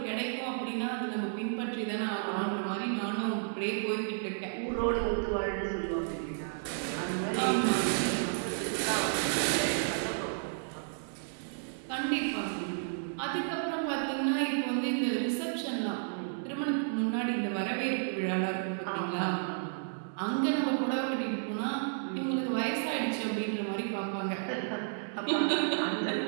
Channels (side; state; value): left; silent; digital silence